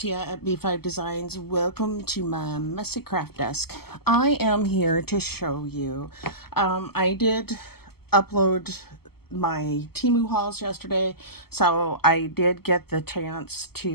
at B5 Designs. Welcome to my messy craft desk. I am here to show you. I did upload my Temu hauls yesterday, so I did get the chance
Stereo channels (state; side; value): late; right; 0.96 ms